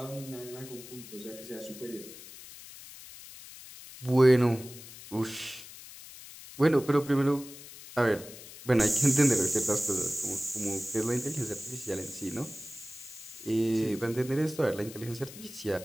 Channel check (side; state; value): left; noise; hiss, 16 dB below the sound